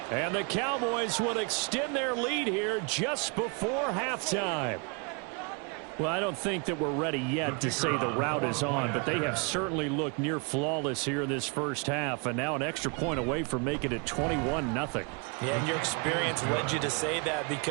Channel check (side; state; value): left; quieter; 34.0 dB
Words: And the Cowboys will extend their lead here just before halftime. Well, I don't think that we're ready yet to say the route is on, but they have certainly looked near flawless here in this first half, and now an extra point away from making it 21-0. Yeah, and your experience led you to say that